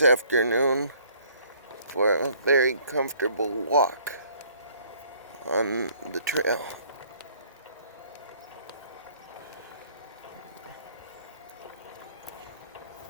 for a very comfortable walk on the trail.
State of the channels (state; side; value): inverted; both; correlation -0.59